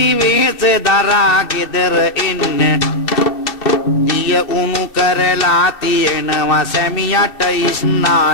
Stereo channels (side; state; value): right; late; 2.7 ms